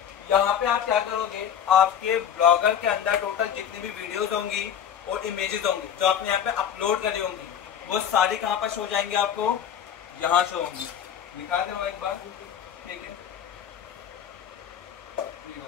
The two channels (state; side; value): quieter; right; 8.9 dB